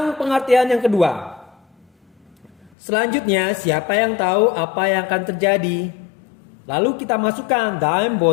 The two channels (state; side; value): drops out; right; at 2.7 s